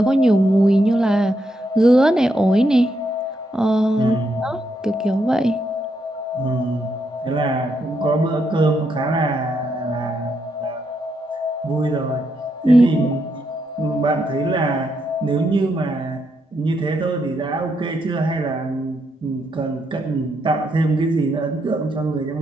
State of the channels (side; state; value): both; normal; correlation 0.79